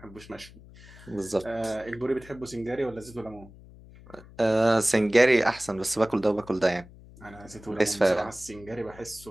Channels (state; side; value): noise; left; hum, 20 dB below the sound